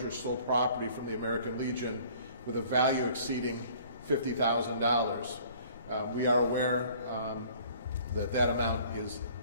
stole property from the American Legion with a value exceeding $50,000. We are aware that that amount is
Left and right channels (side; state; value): both; inverted; correlation -0.53